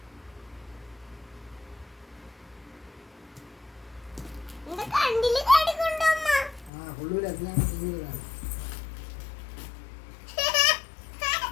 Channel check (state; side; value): drops out; right; at 6.7 s